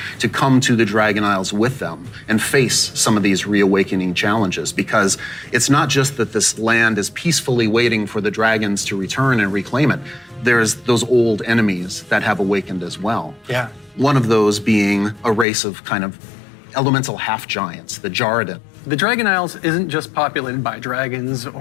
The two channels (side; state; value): right; drops out; at 15.5 s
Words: to come to the Dragon Isles with them and face some of these reawakening challenges, because it's not just that this land is peacefully waiting for the dragons to return and reclaim it. There's those old enemies that have awakened as well. Yeah. One of those being a race of kind of elemental half-giants, the Jarradin. The Dragon Isles isn't just populated by dragons